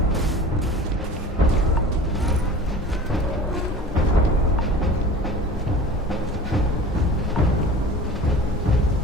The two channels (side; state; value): both; normal; correlation 0.40